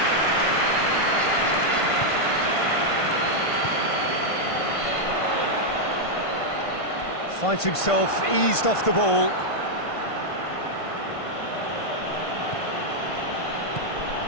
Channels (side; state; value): right; late; 1.5 ms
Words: Finds himself eased off the ball.